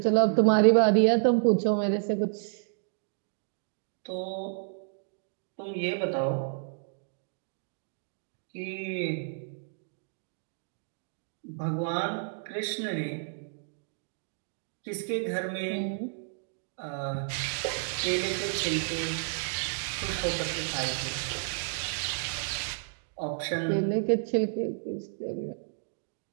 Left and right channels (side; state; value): left; silent; digital silence